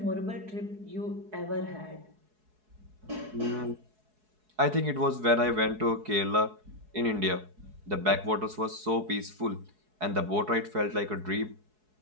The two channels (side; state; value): left; late; 4.7 ms